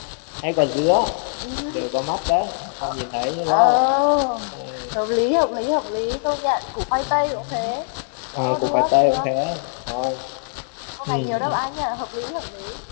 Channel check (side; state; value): right; silent; digital silence